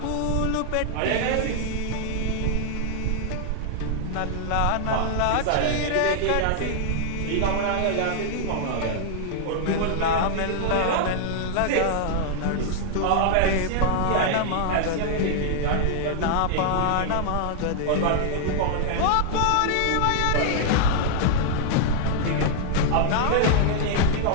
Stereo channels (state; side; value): different; both; correlation -0.01